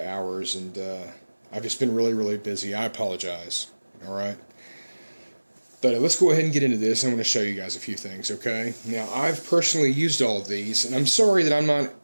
hours, and I've just been really busy. I apologize. All right. But let's go ahead and get into this. I'm going to show you guys a few things, okay? Now, I've personally used all of these, and I'm sorry that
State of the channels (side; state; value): both; inverted; correlation -1.00